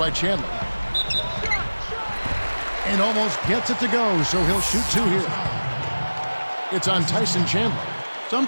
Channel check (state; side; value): inverted; both; correlation -1.00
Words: Chandler. And almost gets it to go, so he'll shoot 2 here. It's on Tyson Chandler.